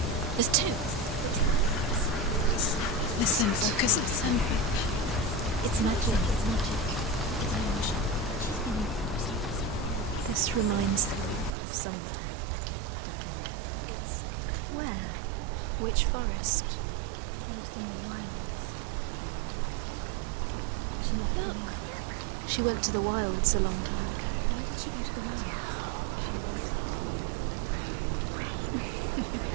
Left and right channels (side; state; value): left; drops out; at 11.6 s